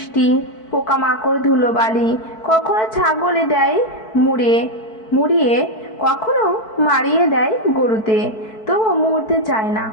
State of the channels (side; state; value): right; late; 4.6 ms